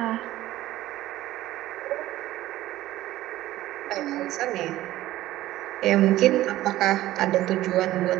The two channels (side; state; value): left; quieter; 15.4 dB